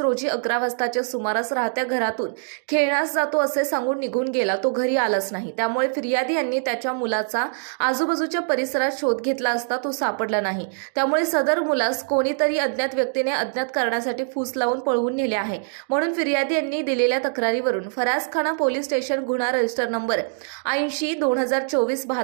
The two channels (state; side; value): silent; left; digital silence